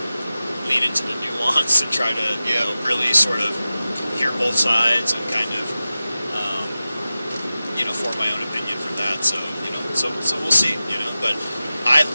lean into the nuance and try to, really sort of hear both sides and kind of, form my own opinion from that. So, so we'll see, but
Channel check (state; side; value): inverted; both; correlation -0.95